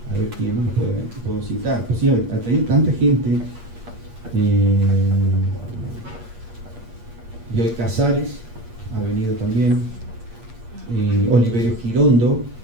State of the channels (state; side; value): late; left; 8.5 ms